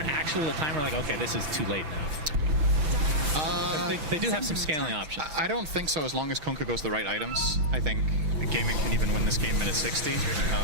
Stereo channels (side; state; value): left; late; 5.9 ms